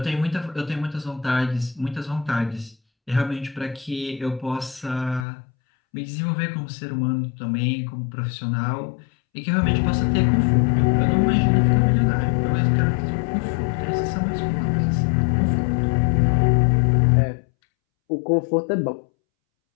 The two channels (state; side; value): drops out; right; at 5.2 s